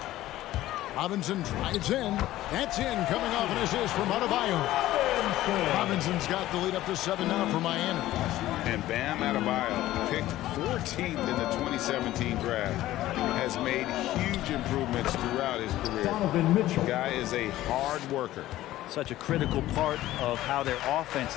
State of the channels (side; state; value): right; quieter; 15.1 dB